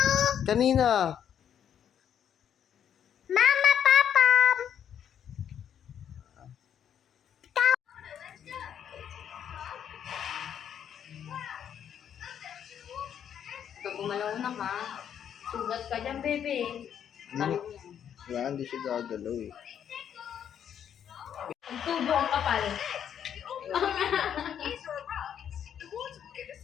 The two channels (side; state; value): right; quieter; 9.0 dB